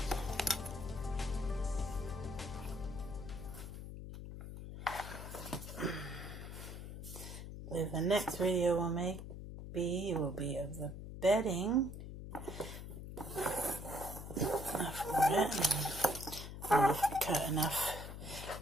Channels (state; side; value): noise; left; hum, 9 dB below the sound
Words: The next video we'll make will be of the bedding for it. And if I cut enough